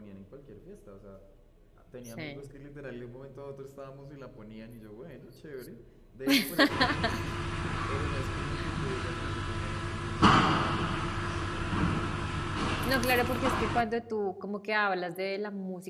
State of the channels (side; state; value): both; identical; correlation 1.00